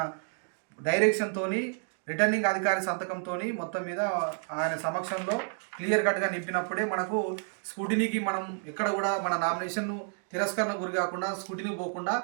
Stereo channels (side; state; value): left; silent; 58 dB below the other